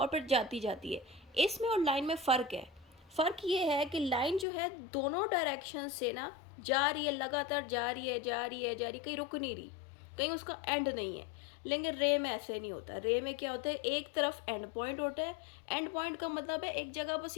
फिर जाती जाती है। इसमें और लाइन में फ़र्क है। फ़र्क ये है कि लाइन जो है दोनों डायरेक्शन से ना जा रही है, लगातार जा रही है, कहीं रुक नहीं रही, कहीं उसका एंड नहीं है। लेकिन रे में ऐसे नहीं होता। रे में क्या होता है, एक तरफ एंड पॉइंट होता है। एंड पॉइंट का मतलब है एक जगह बस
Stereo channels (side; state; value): right; drops out; at 4.5 s